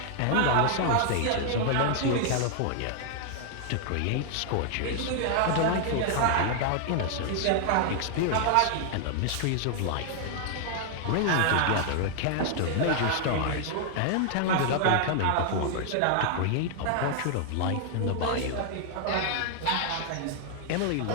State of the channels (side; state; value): both; different; correlation 0.00